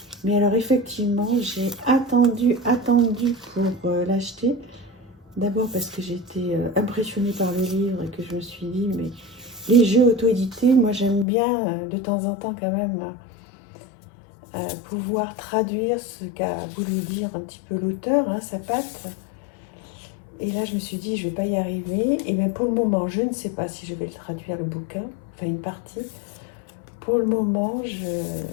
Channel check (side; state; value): right; drops out; at 11.2 s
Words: Mais alors effectivement, j'ai attendu pour l'acheter. D'abord parce que j'ai été impressionnée par le livre et que je me suis dit, mais les jeux auto-édités, moi j'aime bien de temps en temps quand même pouvoir traduire ce qu'a voulu dire un petit peu l'auteur, hein, sa patte. Et là, je me suis dit, je ne vais pas y arriver. Et bien, pour le moment, je ne sais pas si je vais le traduire, le bouquin, enfin une partie. Pour le moment, je